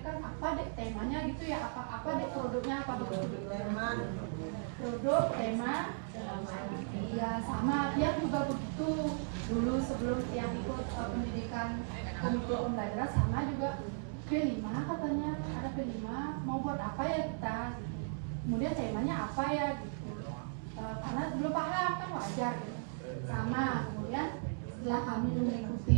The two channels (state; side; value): silent; left; digital silence